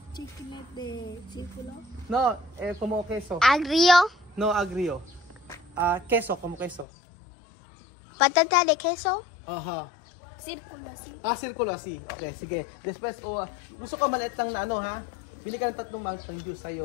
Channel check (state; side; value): drops out; right; at 6.9 s